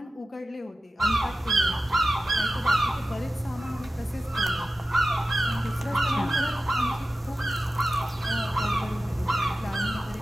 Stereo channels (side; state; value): both; normal; correlation 0.94